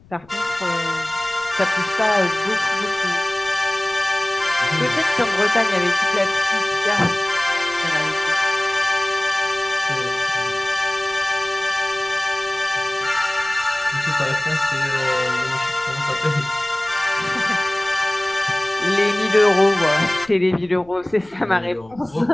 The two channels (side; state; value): left; noise; rumble, 26 dB below the sound